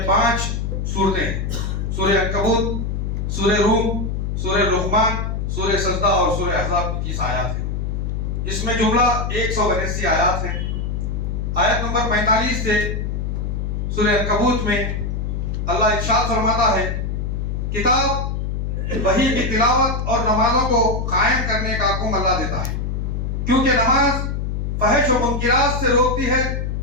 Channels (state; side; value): noise; left; hum, 2 dB below the sound